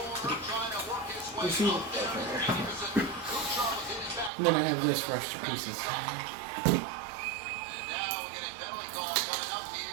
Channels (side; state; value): left; drops out; at 4.3 s